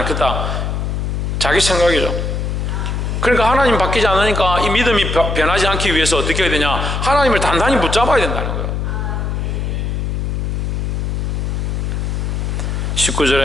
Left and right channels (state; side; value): noise; left; hum, 1 dB below the sound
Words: 자기 생각이죠. 그러니까 하나님 바뀌지 않으니까 이 믿음이 변하지 않기 위해서 어떻게 해야 되냐? 하나님을 단단히 붙잡아야 된다는 거예요.